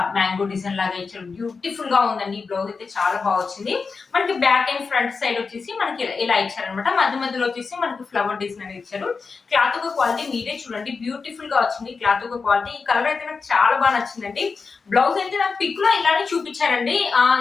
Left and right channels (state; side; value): quieter; right; 4.8 dB